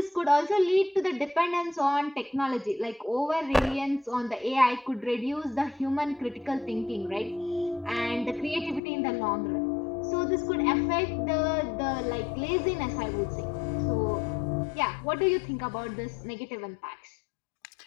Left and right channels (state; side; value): drops out; right; at 8.8 s